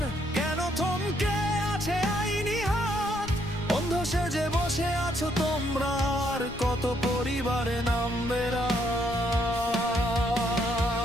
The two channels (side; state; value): left; noise; rumble, 14 dB below the sound